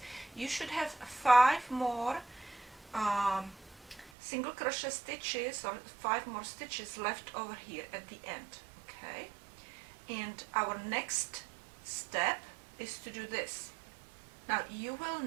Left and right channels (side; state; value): left; drops out; at 4.1 s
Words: you should have 5 more single crochet stitches or 5 more stitches left over here at the end. Okay, and our next step is to do this. Now you will